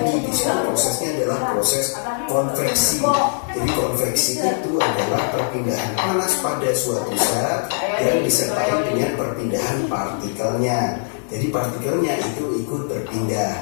Di situ prosesnya adalah proses konveksi. Jadi konveksi itu adalah perpindahan panas pada suatu zat yang disertai dengan perpindahan partikelnya. Jadi partikelnya itu ikut berpindah.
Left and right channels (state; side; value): silent; right; 65 dB below the other